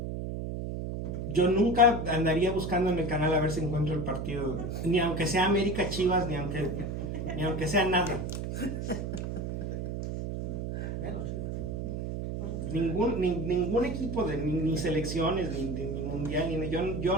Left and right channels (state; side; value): noise; right; hum, 4 dB below the sound